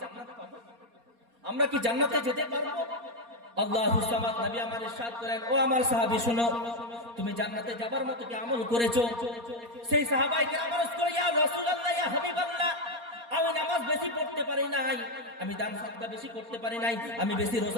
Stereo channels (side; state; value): left; late; 4.3 ms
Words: জান্নাত পাবো? আমরা কি জান্নাতে যেতে পারবো? আল্লাহুস সামাদ। নবী আমার ইরশাদ করেন, ও আমার সাহাবী শুনো, তুমি জান্নাতে যাবার মতো কি আমল করেছো? সেই সাহাবায়ে কেরাম আরজ করে, ইয়া রাসূলুল্লাহ, ইয়া হাবিবাল্লাহ, আমি নামাজ বেশি পড়তে পারি নাই, আমি দান সাদকা বেশি করতে পারি নাই, আমি বেশি